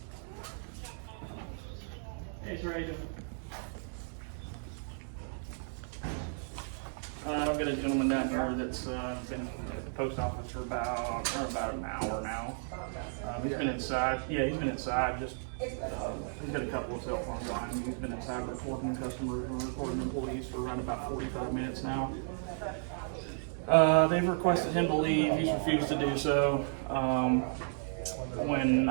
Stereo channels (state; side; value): silent; left; digital silence